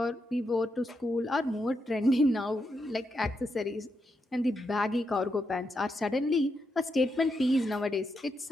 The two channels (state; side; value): normal; both; correlation 0.83